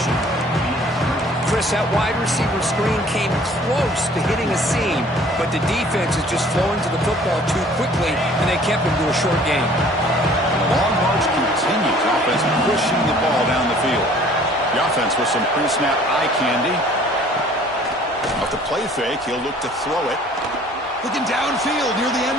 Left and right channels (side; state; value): both; normal; correlation 0.53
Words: Chris, that wide receiver screen came close to hitting a seam, but the defense is just flowing to the football too quickly, and they kept him to a short game. The long march continues. Offense pushing the ball down the field. The offense with some pre-snap eye candy. Off the play fake, he'll look to throw it. Looking downfield near the